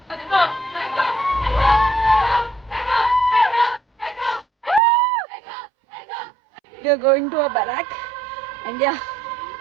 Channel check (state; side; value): drops out; left; at 4.8 s